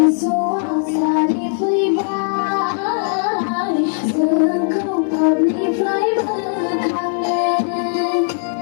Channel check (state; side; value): silent; right; 66 dB below the other